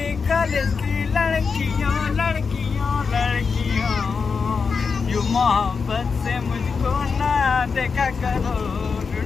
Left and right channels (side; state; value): right; quieter; 5.3 dB